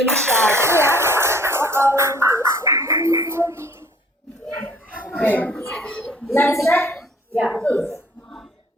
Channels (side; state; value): both; normal; correlation 0.55